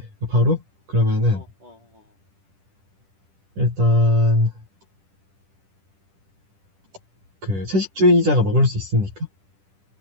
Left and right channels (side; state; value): left; late; 10 ms